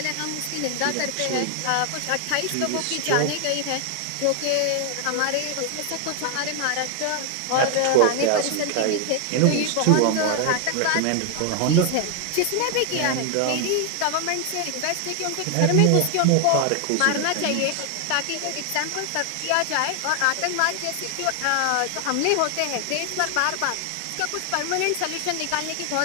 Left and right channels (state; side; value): different; both; correlation 0.00